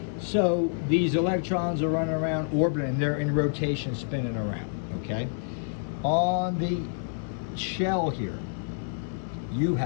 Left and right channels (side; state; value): right; silent; digital silence